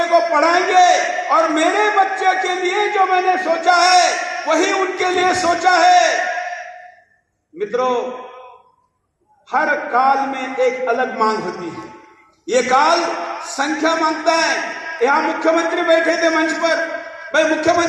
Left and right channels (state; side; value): identical; both; correlation 1.00